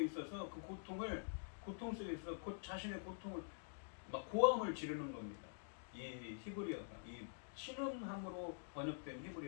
있어서 그 고통 속에 있어서 자신의 고통을 막 고함을 지르는 겁니다. 이 히브리어가, 이 신음함으로 번역된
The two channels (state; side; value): silent; right; digital silence